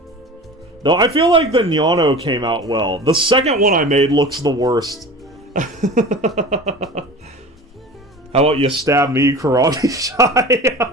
Though I feel like the Nyano came out well. The second one I made looks the worst. How about you stab me, Karate Shy?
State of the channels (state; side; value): normal; both; correlation 0.36